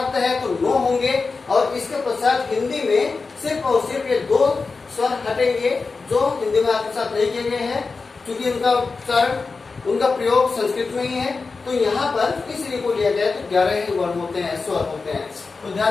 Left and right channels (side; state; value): right; quieter; 4.3 dB